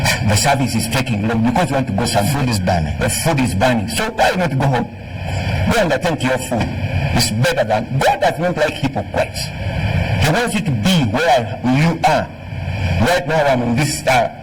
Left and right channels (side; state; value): both; identical; correlation 1.00